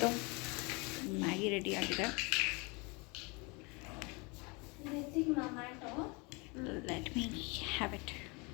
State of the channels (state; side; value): quieter; right; 29.0 dB